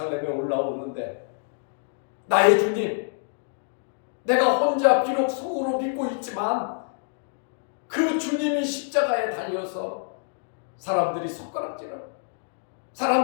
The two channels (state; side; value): silent; right; digital silence